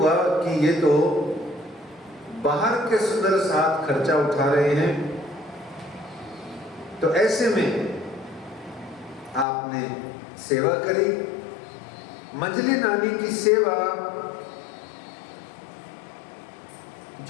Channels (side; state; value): right; drops out; at 9.5 s